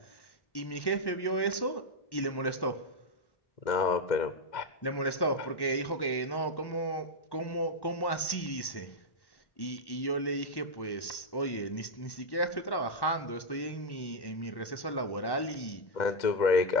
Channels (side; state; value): right; late; 1.1 ms